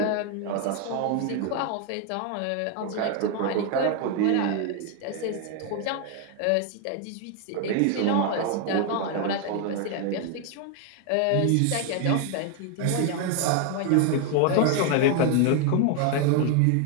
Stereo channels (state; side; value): different; both; correlation 0.01